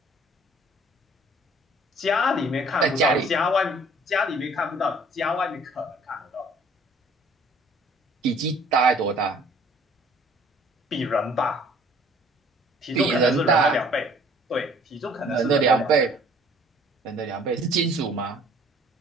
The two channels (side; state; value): both; normal; correlation 0.55